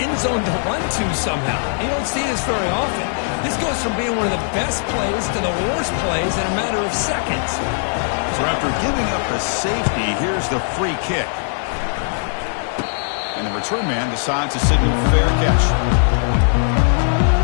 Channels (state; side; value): silent; right; digital silence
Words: zone to run to somehow. You don't see this very often. This goes from being one of the best plays to the worst plays in a matter of seconds. So after giving up a safety, here's the free kick. And the return man decides to signal fair catch.